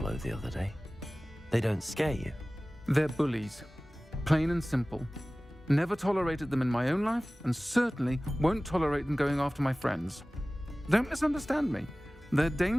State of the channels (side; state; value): both; normal; correlation 0.98